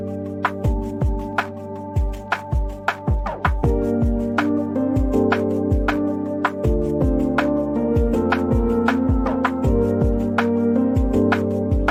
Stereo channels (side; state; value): both; identical; correlation 1.00